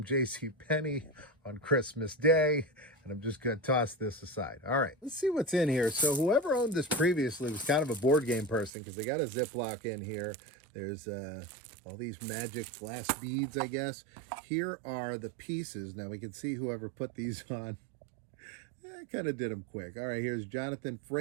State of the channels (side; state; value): left; drops out; at 8.7 s